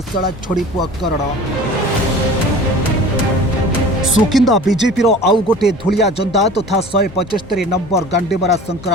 सळा छड़ी पुआ करण। सुकिंदा बीजेपी रो आउ गोटे धुलिया जंदा तथा 175 नंबर गांडीमरा शंकरा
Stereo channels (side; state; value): both; normal; correlation 0.41